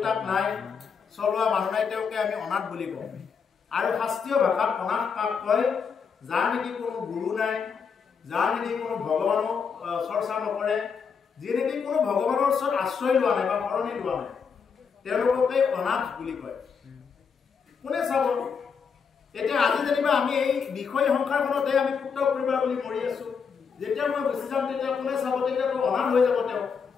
নাই চলোৱা মানুহ নাই তেওঁকে আমি অনাথ বুলি কওঁ আৰু শাস্ত্ৰীয় ভাষাত অনাথ কাক কয় যাৰ নেকি কোনো গুৰু নাই যাৰ নেকি কোনো ভগৱানক চৰ্চা নকৰে যি নেকি কোনো ভগৱানৰ ওচৰত আশ্ৰয় লোৱা নাই বা শৰণি লোৱা নাই তেওঁলোককে অনাথ বুলি কয় কোনে চাব এতিয়া আজি যেনিবা আমি এই বিষয় সংসাৰখনতে আমি পুত্ৰ পৰিবাৰ বুলি মৰি আছো যেতিয়া মই গুচি যাম তেতিয়া কোনে চাব তেতিয়াতো অনাথ হৈ যাব তেওঁ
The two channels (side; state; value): right; quieter; 6.1 dB